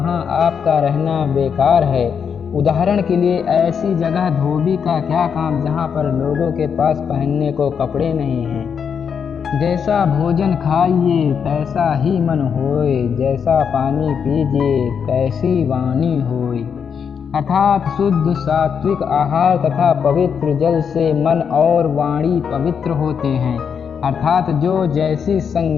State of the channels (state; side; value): quieter; right; 7.0 dB